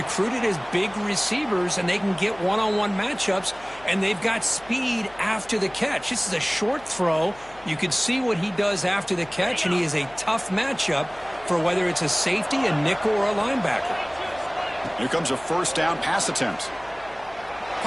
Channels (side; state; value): left; noise; hum, 24 dB below the sound